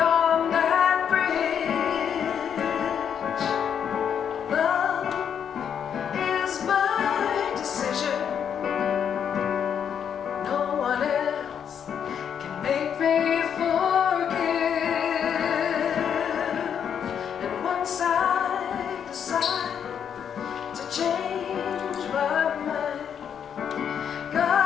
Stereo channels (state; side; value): quieter; right; 8.1 dB